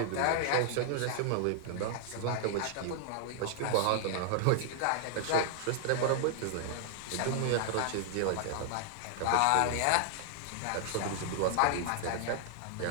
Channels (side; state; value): both; different; correlation 0.00